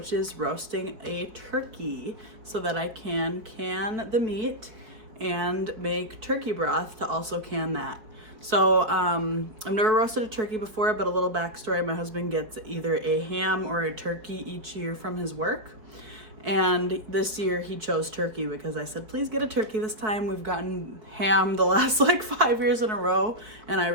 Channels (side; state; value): left; late; 4.6 ms